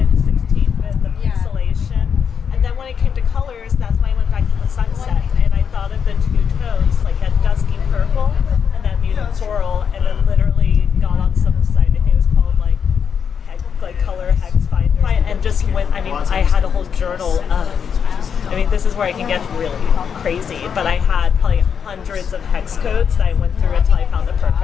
16-bit, the pixelation. And then when it came to colors, that's when I went back to the sunset, and I thought of the two tones, like that dusky purple and that muted coral, and then literally got on some site, I think it was called like Color Hex Finder, and just went, I mean, I had a whole journal of, I mean, this is where I can get really crazy, but I had probably hundreds of hex codes that I went through until I found the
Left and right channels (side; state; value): right; quieter; 7.1 dB